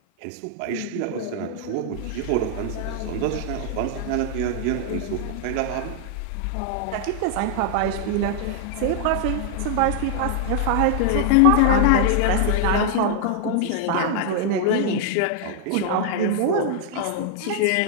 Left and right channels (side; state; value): both; different; correlation -0.01